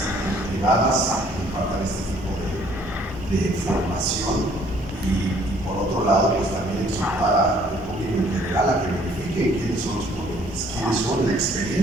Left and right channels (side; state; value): both; normal; correlation 0.60